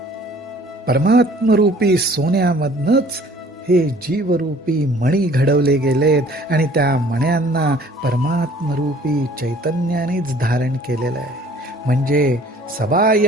परमात्मरूपी सोन्यामधनच हे जीवरूपी मणी घडवले गेलेत आणि त्या मण्यांना परमात्मरूपी चैतन्यानेच धारण केलेलं आहे. म्हणजे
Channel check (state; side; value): normal; both; correlation 0.53